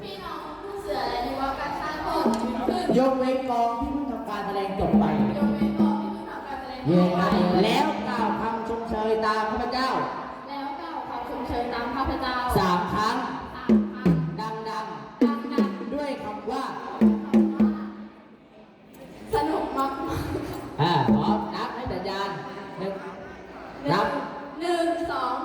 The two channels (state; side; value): identical; both; correlation 1.00